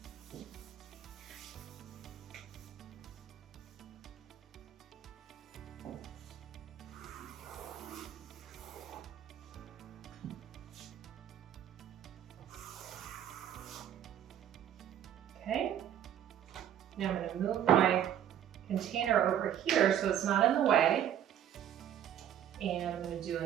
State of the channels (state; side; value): quieter; left; 10.3 dB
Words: Okay, now I'm going to move my container over here so it's not in the way. And I'm going to do